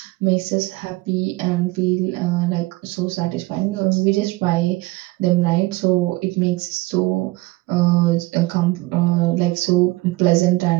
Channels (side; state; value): left; quieter; 20.1 dB